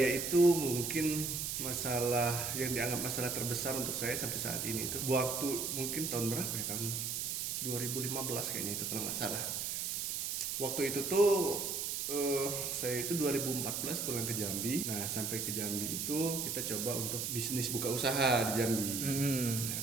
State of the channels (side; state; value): right; noise; hiss, 2 dB below the sound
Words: itu mungkin masalah yang dianggap masalah terbesar untuk saya sampai saat ini itu waktu mungkin tahun berapa ya, tahun 2015 kayaknya itu kalau nggak salah. Waktu itu tuh saya itu 2014 pulang ke Jambi. Nah, sampai ke Jambi itu kita coba untuk bisnis buka usaha di Jambi.